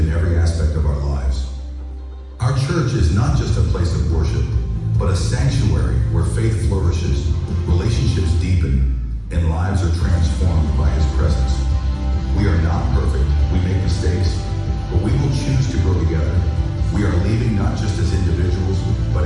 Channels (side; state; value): both; identical; correlation 1.00